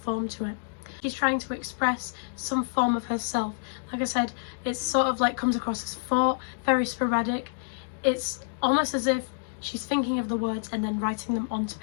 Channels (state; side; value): silent; right; digital silence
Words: to it. She's trying to express some form of herself. Like I said, it's sort of like comes across as thought, very sporadic. It's almost as if she's thinking of the words and then writing them onto